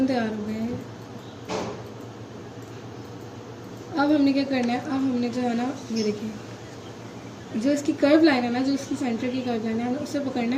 तैयार हो गए हैं। अब हमने क्या करना है, अब हमने जो है ना, ये देखिए जो इसकी कर्व लाइन है ना, जो इसकी सेंटर की कर्व लाइन है, उसे पकड़ना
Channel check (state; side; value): identical; both; correlation 1.00